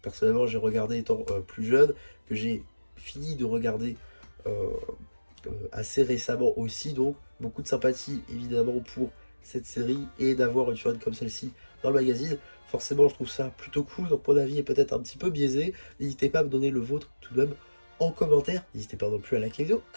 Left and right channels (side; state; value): both; inverted; correlation -1.00